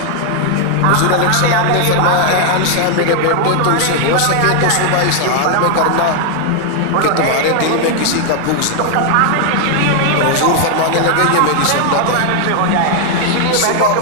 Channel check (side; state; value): both; different; correlation 0.00